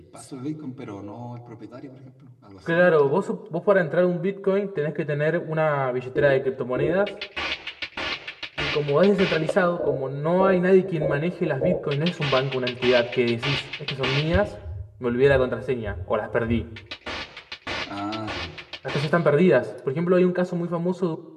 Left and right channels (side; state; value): both; identical; correlation 1.00